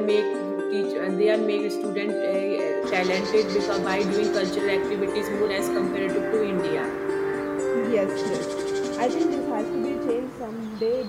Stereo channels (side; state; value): both; identical; correlation 1.00